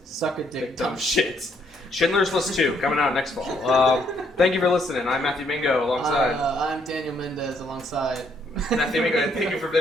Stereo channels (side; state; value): both; normal; correlation 0.70